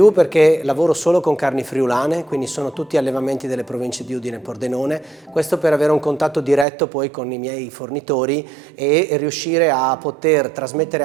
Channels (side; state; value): left; drops out; at 6.7 s